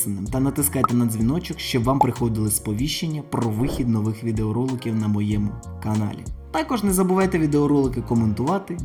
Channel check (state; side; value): identical; both; correlation 1.00